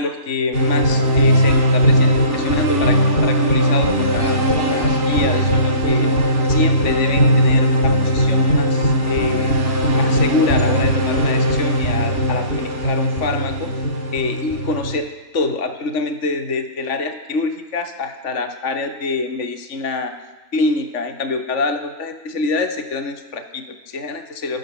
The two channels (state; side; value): late; right; 3.5 ms